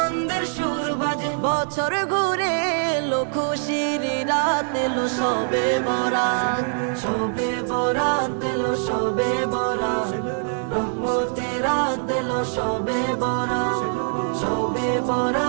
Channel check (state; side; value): silent; left; 63 dB below the other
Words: সুর বাজে। বছর ঘুরে এলো খুশির রাত এলো সবে বরাত, সবে বরাত এলো সবে বরাত। রহমতের রাত এলো সবে বরাত, সবে